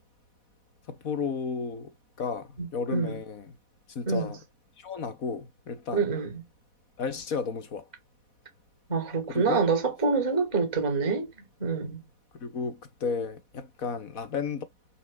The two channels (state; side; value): late; right; 4.1 ms